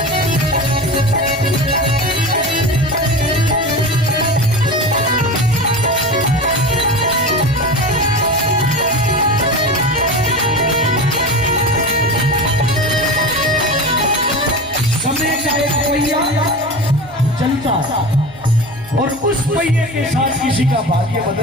चलता और उस पहिए के साथ किसी का भाग्य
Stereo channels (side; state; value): right; noise; hum, 22 dB below the sound